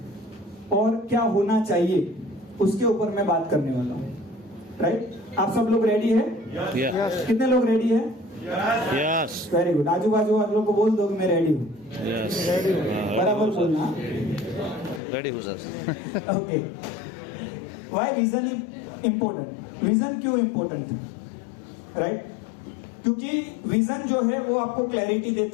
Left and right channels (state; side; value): drops out; right; at 15.0 s